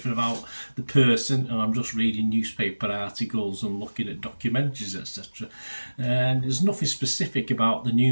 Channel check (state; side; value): inverted; both; correlation -1.00